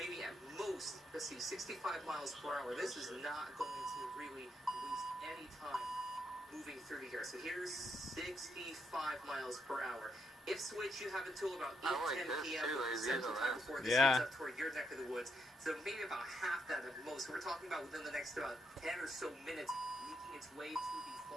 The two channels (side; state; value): both; normal; correlation 0.78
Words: be at most, let's see, 65 miles per hour. This is not going to really waste any time moving through here. So here's 65 miles per hour. If switch, you have until about 8:10 p.m. Central Time before this gets up toward your neck of the woods. So maybe about half that at most. So we're talking about within the next about 10 or so minutes, making its way to the